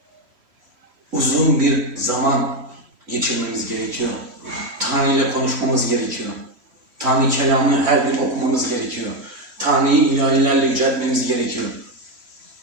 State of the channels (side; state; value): left; late; 3.1 ms